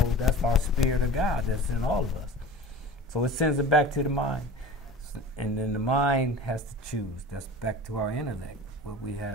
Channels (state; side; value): normal; both; correlation 0.37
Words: that's our spirit of God that's in all of us. So it sends it back to the mind. And then the mind has to choose. That's back to our intellect, where we